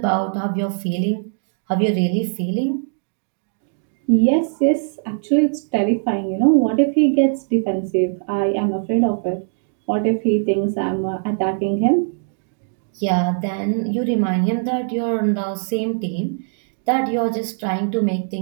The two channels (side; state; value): left; silent; digital silence